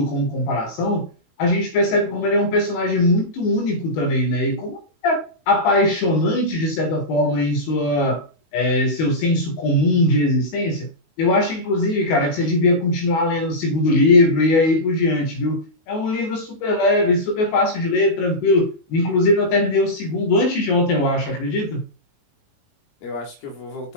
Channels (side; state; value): right; late; 19 ms